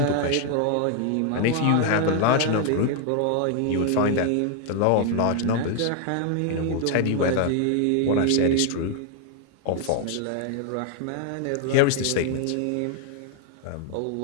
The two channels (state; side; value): different; both; correlation 0.00